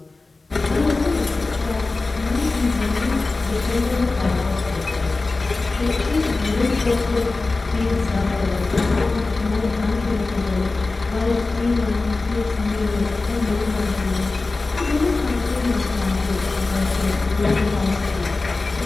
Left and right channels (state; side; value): quieter; right; 3.5 dB